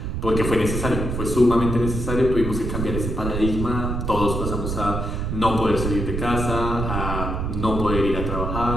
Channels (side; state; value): right; noise; rumble, 3 dB below the sound